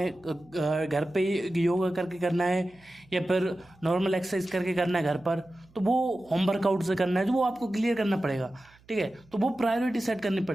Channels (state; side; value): noise; right; hum, 29 dB below the sound